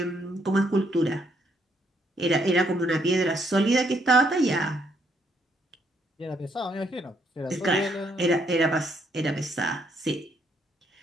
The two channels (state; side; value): normal; both; correlation 0.71